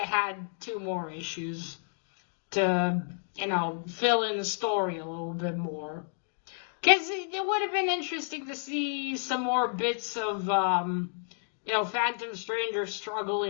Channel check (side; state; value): right; silent; digital silence